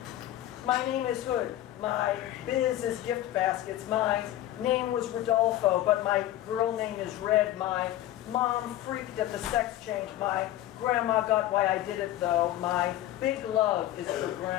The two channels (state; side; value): quieter; right; 13.8 dB